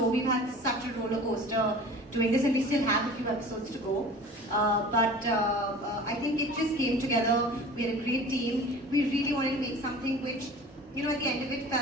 We've had such a roller coaster doing this, and we still have a few episodes to go. But I think it just came together. We had a great team. We really wanted to make something which, at the end of it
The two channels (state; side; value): normal; both; correlation 0.41